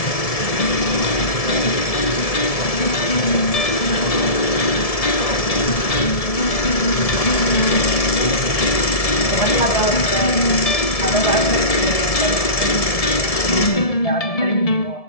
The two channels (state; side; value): late; right; 1.7 ms